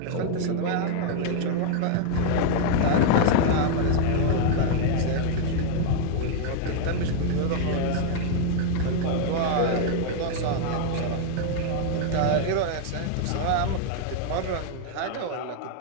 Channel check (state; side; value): different; both; correlation 0.00